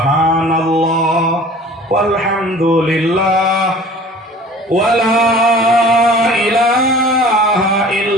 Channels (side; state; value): both; normal; correlation 0.46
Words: walhamdulillah wala ilaha